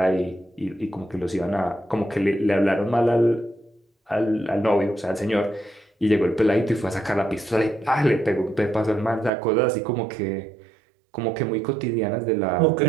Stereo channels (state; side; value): drops out; left; at 9.3 s